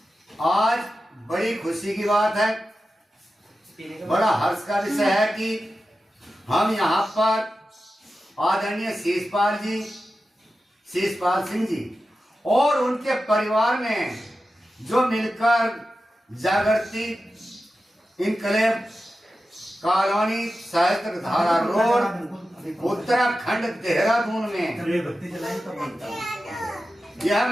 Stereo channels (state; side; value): normal; both; correlation 0.92